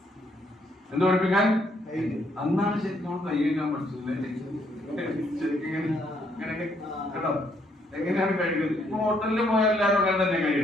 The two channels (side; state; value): both; normal; correlation 0.71